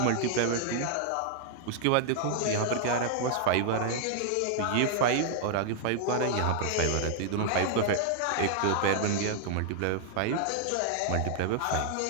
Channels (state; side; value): different; both; correlation -0.01